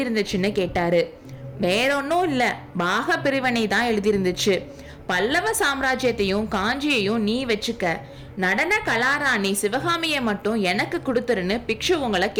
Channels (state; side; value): identical; both; correlation 1.00